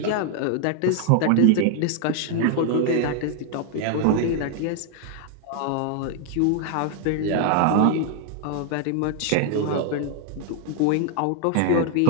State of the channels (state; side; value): different; both; correlation 0.00